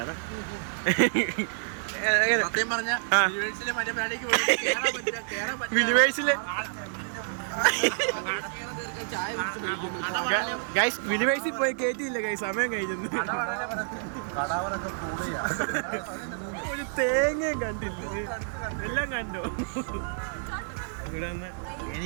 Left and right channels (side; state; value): left; silent; digital silence